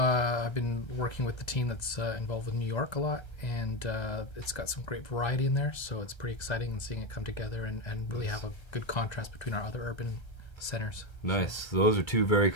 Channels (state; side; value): late; right; 1.3 ms